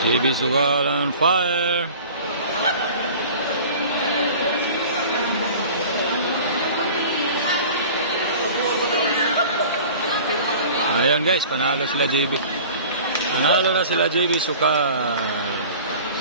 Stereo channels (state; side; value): inverted; both; correlation -0.42